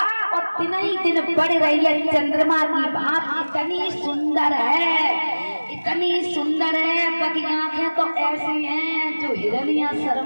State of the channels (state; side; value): inverted; both; correlation -1.00